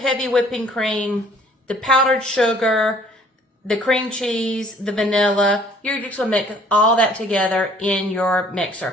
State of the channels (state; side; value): normal; both; correlation 0.57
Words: whipping cream, the powdered sugar, the cream cheese, the vanilla. You're just going to mix all that together in your